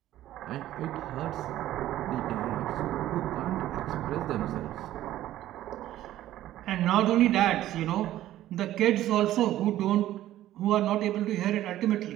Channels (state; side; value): quieter; left; 13.6 dB